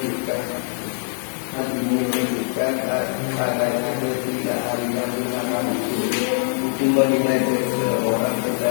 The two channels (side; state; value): right; silent; 56 dB below the other